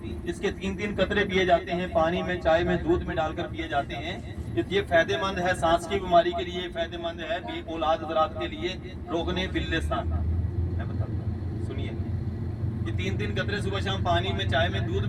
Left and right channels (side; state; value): both; identical; correlation 1.00